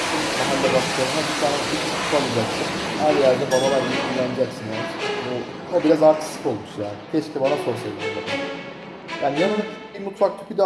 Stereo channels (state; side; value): identical; both; correlation 1.00